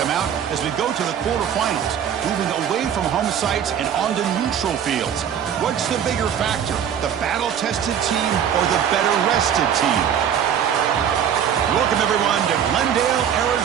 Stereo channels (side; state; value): left; quieter; 8.8 dB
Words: mount as we go to the quarterfinals, moving away from home sites and onto neutral fields. What's the bigger factor, the battle-tested team or the better-rested team? Welcome, everyone, to Glendale,